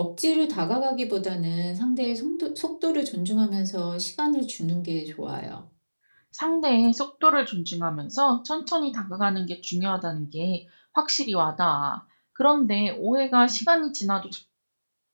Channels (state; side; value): inverted; both; correlation -1.00